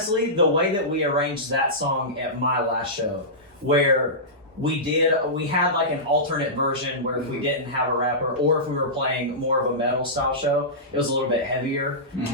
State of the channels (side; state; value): both; normal; correlation -0.17